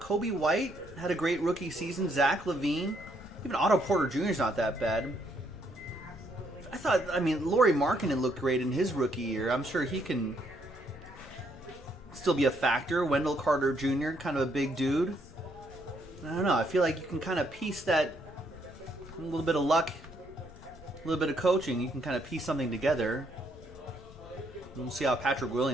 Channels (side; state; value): left; noise; rumble, 19 dB below the sound